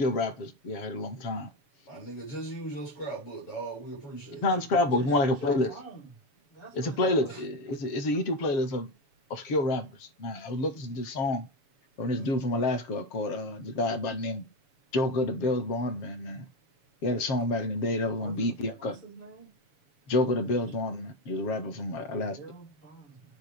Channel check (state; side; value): late; right; 7.1 ms